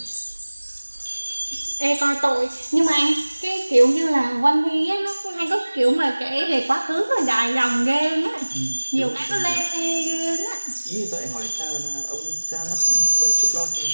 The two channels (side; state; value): both; inverted; correlation -1.00